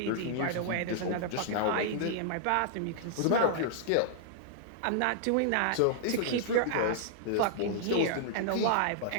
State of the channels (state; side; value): different; both; correlation -0.01